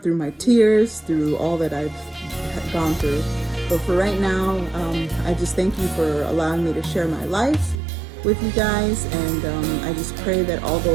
through my tears, through all that I've gone through. But for right now, I just thank you for allowing me to share my life with you guys, and I just pray that all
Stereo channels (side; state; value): left; drops out; at 7.8 s